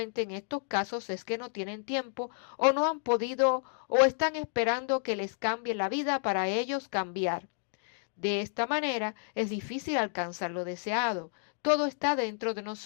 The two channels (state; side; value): silent; right; 57 dB below the other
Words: en estos casos es que no tienen tiempo o no han podido o están esperando que les cambie la vida para ellos cambiar. De esta manera es difícil alcanzar lo deseado. Todo está dentro de